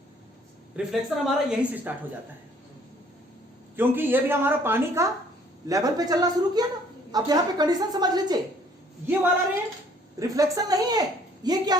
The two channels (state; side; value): normal; both; correlation 0.60